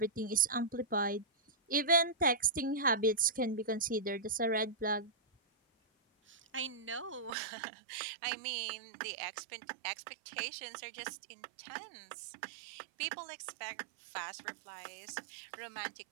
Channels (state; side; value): drops out; left; at 7.4 s